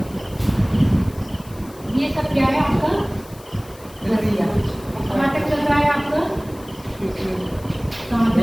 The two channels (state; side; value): noise; left; hiss, 22 dB below the sound